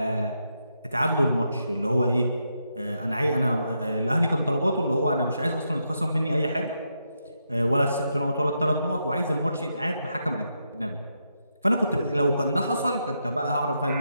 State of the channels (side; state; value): both; inverted; correlation -0.82